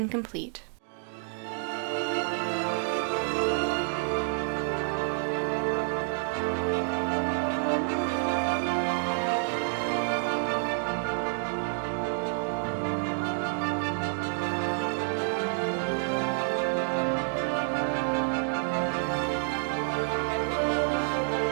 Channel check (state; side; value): silent; left; 59 dB below the other